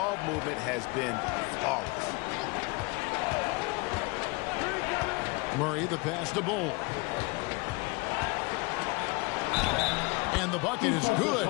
movement has been flawless. Murray, the pass to Bull. And the bucket is good.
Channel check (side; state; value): right; quieter; 27.4 dB